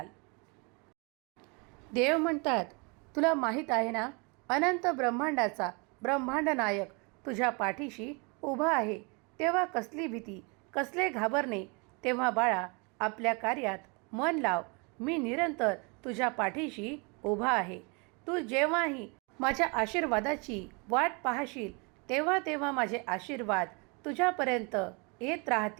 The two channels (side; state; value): left; quieter; 31.3 dB